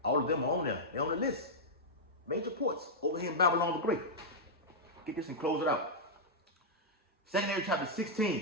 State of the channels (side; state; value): both; normal; correlation -0.07